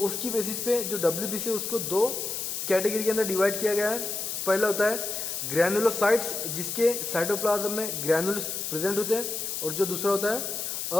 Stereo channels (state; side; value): noise; left; hiss, 4 dB below the sound